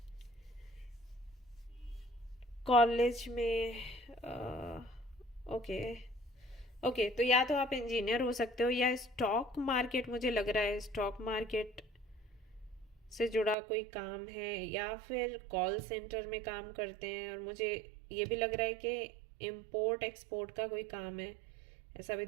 कॉलेज में, ओके ओके, तो या तो आप इंजीनियर हो सकते हो, या स्टॉक मार्केट, मुझे लग रहा है स्टॉक मार्केट से जुड़ा कोई काम है, या फिर कॉल सेंटर में काम करते हैं। और मुझे ये भी लग रहा है कि इम्पोर्ट एक्सपोर्ट का कोई काम है, ऐसा भी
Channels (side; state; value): left; drops out; at 13.6 s